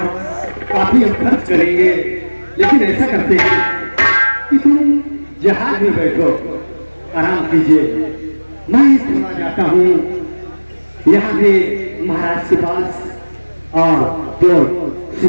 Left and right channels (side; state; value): both; inverted; correlation -1.00